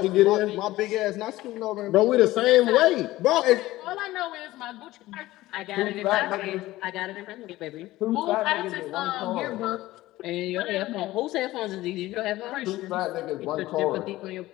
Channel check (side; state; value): right; quieter; 17.1 dB